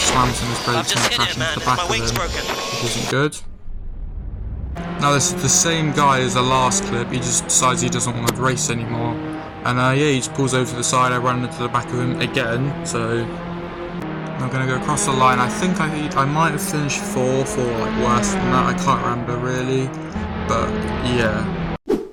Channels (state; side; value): identical; both; correlation 1.00